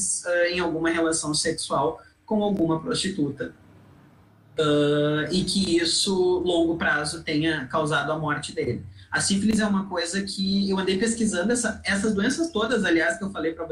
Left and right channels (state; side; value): identical; both; correlation 1.00